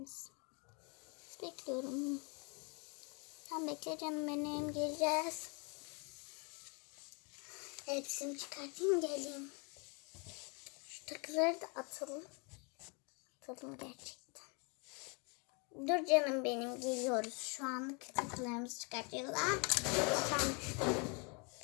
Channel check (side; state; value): right; quieter; 33.4 dB